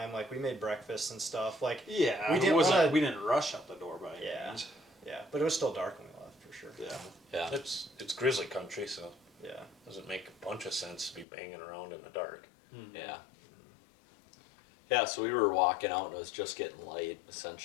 Like we made breakfast and stuff. Like Yeah, we didn't we didn't rush out the door by any means. yeah, but it was still dark when we left for sure. Yeah. Yeah. It's grizzly country, so Yeah. it doesn't make a bunch of sense to be banging around in the dark. Mm-hmm. Yeah. Yeah, so we were walking out and it was just getting light,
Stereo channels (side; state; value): right; drops out; at 11.2 s